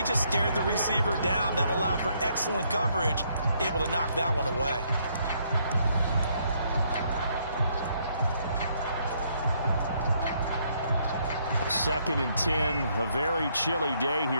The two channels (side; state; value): both; inverted; correlation -0.71